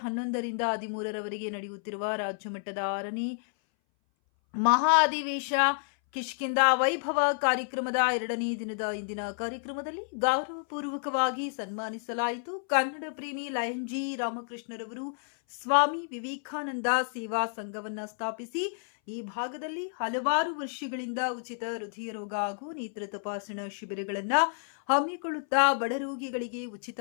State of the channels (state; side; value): silent; right; 58 dB below the other